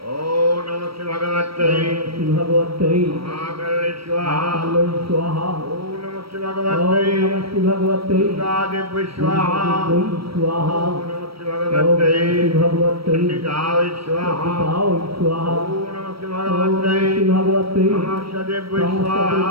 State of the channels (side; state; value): left; late; 0.75 ms